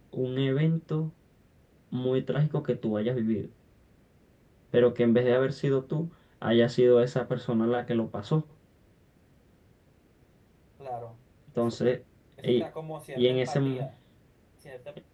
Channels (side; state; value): both; identical; correlation 1.00